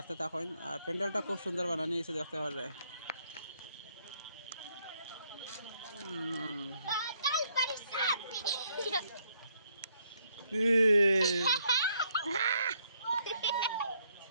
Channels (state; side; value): inverted; both; correlation -0.71